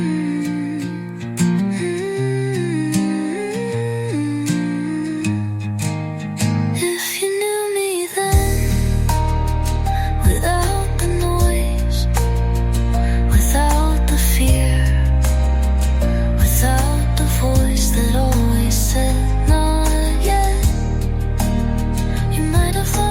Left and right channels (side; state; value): both; identical; correlation 1.00